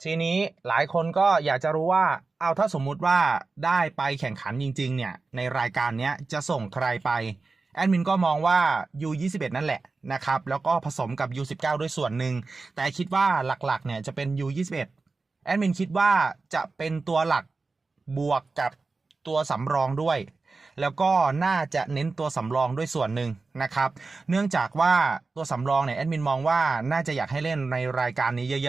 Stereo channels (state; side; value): quieter; left; 3.9 dB